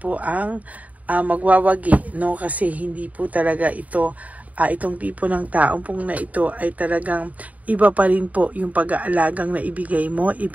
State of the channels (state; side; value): late; left; 0.072 ms